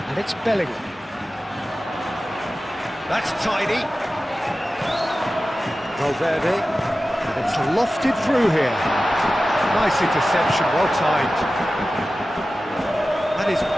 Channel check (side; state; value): both; normal; correlation 0.95